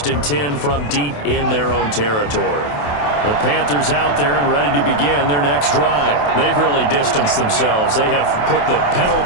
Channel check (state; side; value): late; right; 28 ms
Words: and 10 from deep in their own territory. The Panthers out there and ready to begin their next drive. They've really distanced themselves. They have put the pedal